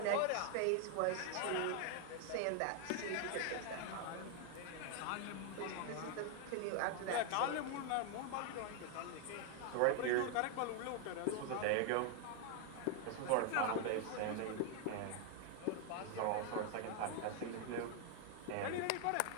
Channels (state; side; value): different; both; correlation 0.00